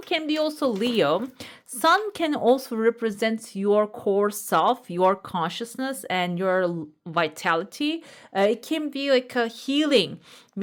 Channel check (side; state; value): both; identical; correlation 1.00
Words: can be also Leo. Sun can also represent your core self, your consciousness, and your vitality. It can be like a healing,